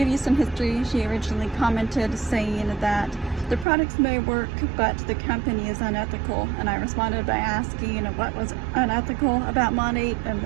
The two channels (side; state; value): left; drops out; at 3.7 s